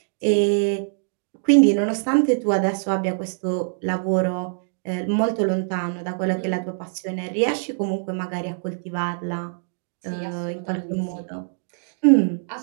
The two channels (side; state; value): left; silent; digital silence